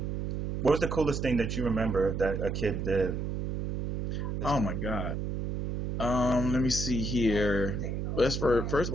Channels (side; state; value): right; noise; hum, 2 dB below the sound